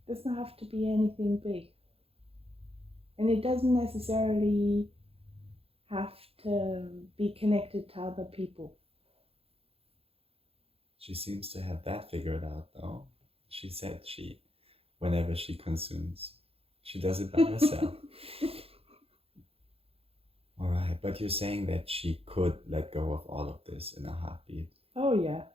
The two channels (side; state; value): left; late; 0.28 ms